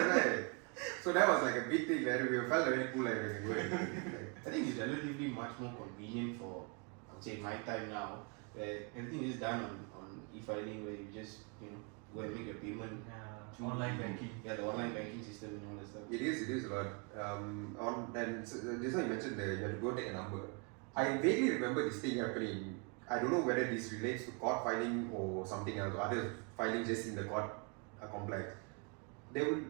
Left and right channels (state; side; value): quieter; left; 33.8 dB